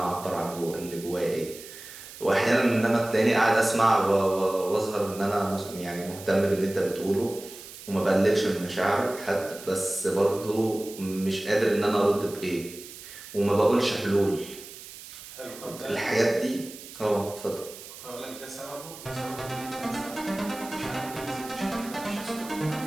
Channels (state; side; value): noise; right; hiss, 15 dB below the sound